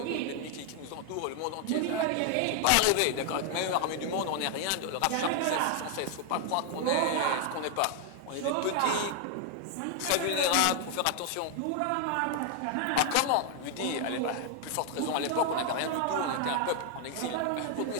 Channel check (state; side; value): different; both; correlation 0.00